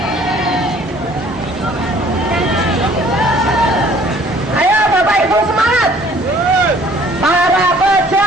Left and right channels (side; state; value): both; normal; correlation 0.56